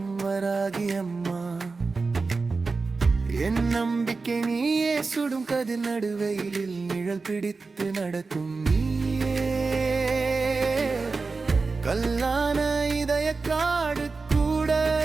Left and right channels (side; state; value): left; quieter; 4.1 dB